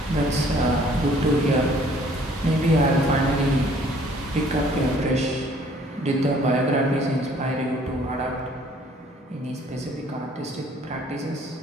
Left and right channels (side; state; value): both; normal; correlation 0.58